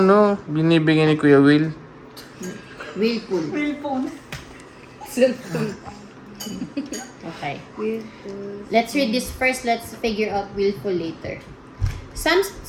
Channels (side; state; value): both; identical; correlation 1.00